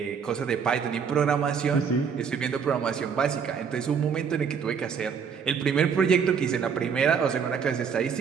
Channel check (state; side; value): quieter; left; 6.6 dB